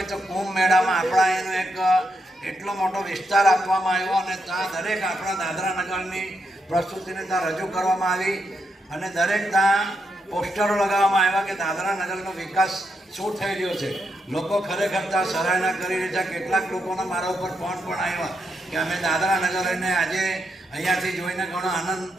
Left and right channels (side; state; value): both; normal; correlation 0.81